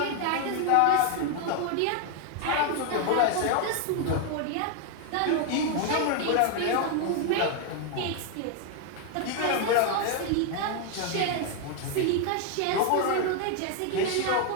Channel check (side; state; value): both; different; correlation 0.01